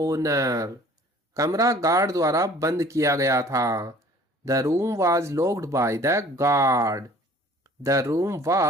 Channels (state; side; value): normal; both; correlation 0.50